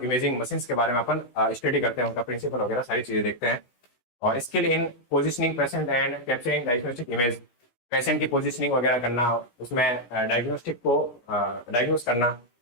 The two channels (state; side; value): late; right; 16 ms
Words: इमेजिंग मशीन के बारे में अपन स्टडी करते हैं, उनका प्रिंसिपल वगैरह सारी चीजें देखते हैं। और skill in positioning patient and capturing diagnostic image, patient की पोजिशनिंग वगैरह करना, उसमें डायग्नोस्टिक को डायग्नोस करना,